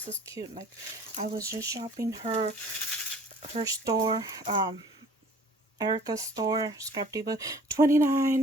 is cute. Like, I was just shopping her store, Erica's store, Scrap Diva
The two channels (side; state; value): both; normal; correlation 0.51